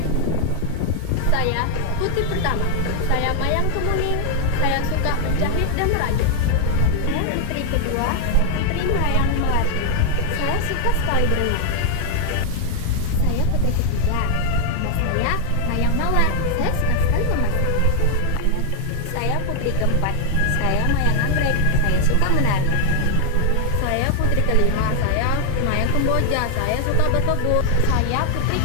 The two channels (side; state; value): both; different; correlation 0.00